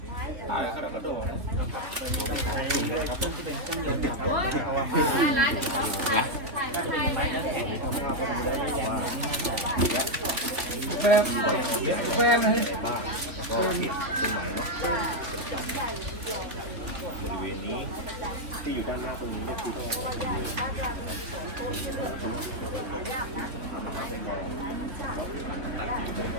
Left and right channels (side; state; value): left; late; 3.8 ms